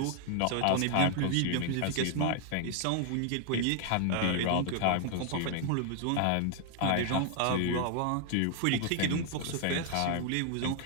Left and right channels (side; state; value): both; different; correlation 0.00